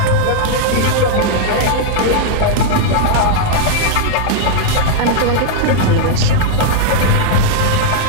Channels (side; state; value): both; different; correlation -0.01